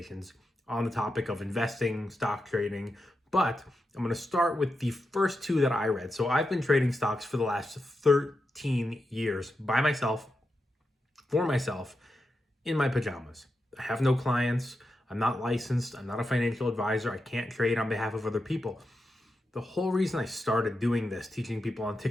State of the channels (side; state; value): both; normal; correlation 0.88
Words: on the topic of investing, stock trading, but I'm going to start with the first two that I read. So I've been trading stocks for the last 13 years by myself, for myself, in my pajamas. I have no clients. I'm not licensed. I'm not a financial advisor. I can't trade on behalf of other people. The whole reason I started doing this, teaching people on